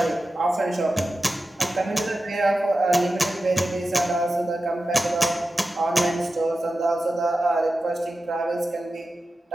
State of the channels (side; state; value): both; normal; correlation 0.93